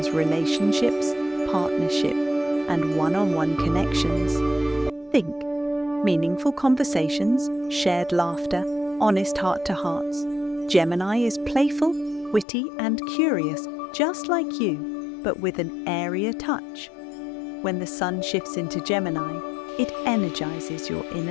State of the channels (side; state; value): right; drops out; at 12.5 s